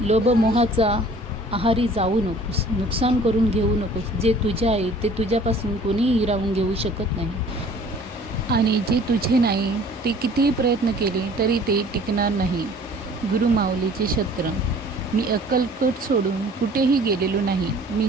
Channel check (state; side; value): normal; both; correlation 0.51